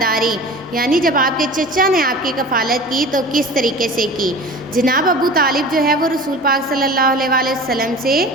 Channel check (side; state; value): both; normal; correlation 0.38